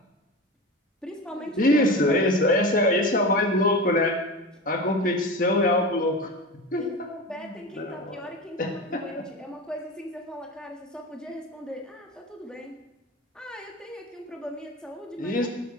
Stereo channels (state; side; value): normal; both; correlation 0.28